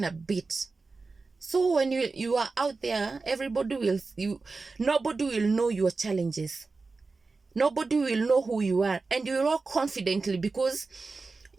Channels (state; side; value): quieter; left; 4.0 dB